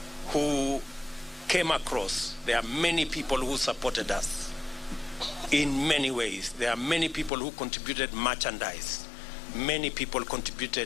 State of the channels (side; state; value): right; drops out; at 7.3 s